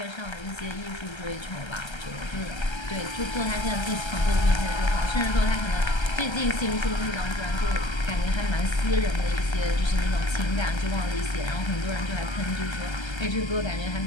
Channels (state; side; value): late; right; 1.3 ms